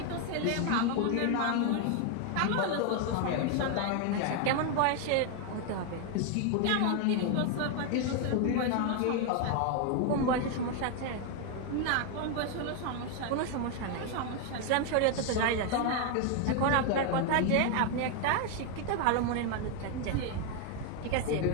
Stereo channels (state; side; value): different; both; correlation 0.01